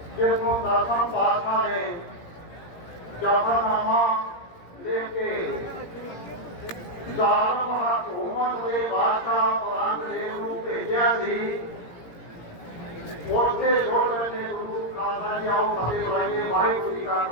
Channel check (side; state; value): right; late; 17 ms